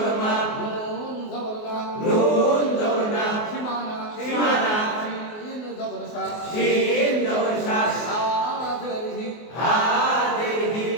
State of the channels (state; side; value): late; right; 24 ms